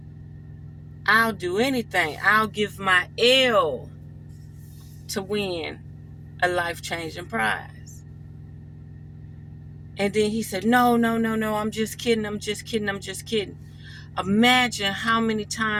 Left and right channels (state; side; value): identical; both; correlation 1.00